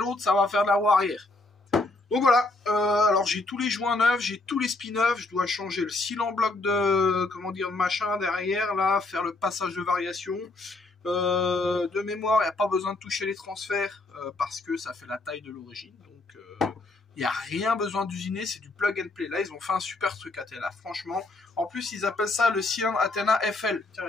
ça va faire de la roue arrière. Donc voilà, alors j'ai tous les joints neufs, j'ai tous les spins neufs, je dois changer le seal en bloc de, comment dire, de machin derrière, là, faire le passage de variation. De mémoire, il n'y a pas besoin de toucher les transferts, parce que ça fait la taille de l'origine, donc il n'y a rien besoin d'usiner, c'est du plug and play. Là, ils ont fait un super truc Athena, franchement. En plus, ils appellent ça le cylindre Athena FL. Tiens,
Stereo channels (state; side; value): quieter; right; 3.1 dB